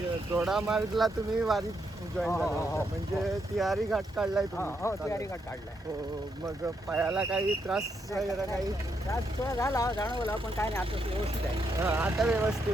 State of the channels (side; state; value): both; normal; correlation 0.79